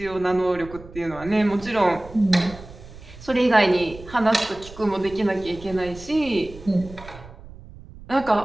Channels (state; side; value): noise; right; rumble, 17 dB below the sound